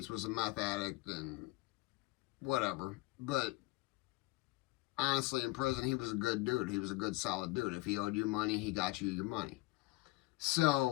was a meth addict and whatever. But honestly, in prison, he was a good dude. He was a good, solid dude. If he owed you money, he got you your money.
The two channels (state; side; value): quieter; right; 21.7 dB